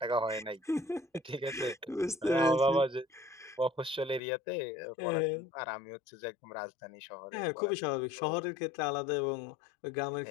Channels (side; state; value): right; drops out; at 4.2 s